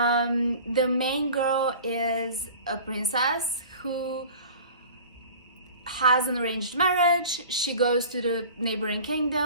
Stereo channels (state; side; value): inverted; both; correlation -0.42